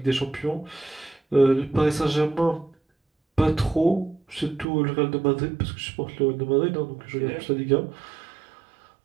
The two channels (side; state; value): left; drops out; at 4.7 s